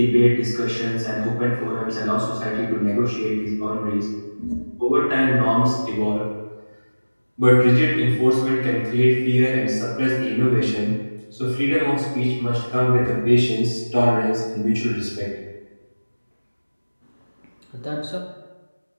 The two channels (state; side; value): inverted; both; correlation -1.00